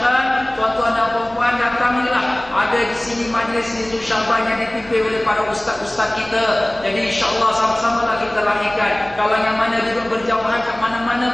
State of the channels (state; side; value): noise; left; hum, 24 dB below the sound